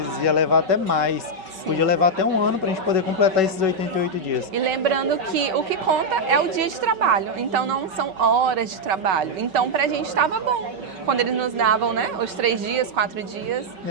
ia levar até mais. Podia levar até 1 ano para a gente poder completar esses 88 dias. E lembrando que o que conta é o dia de trabalho, então não são horas de trabalho. Então pra gente estava bom quando eles nos davam, né, os 3 dias, 4 dias,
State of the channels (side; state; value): left; late; 5.3 ms